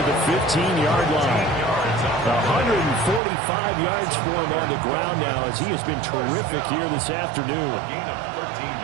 the 15-yard line. 145 yards for him on the ground now as he has been terrific here this afternoon.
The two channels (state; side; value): drops out; left; at 3.2 s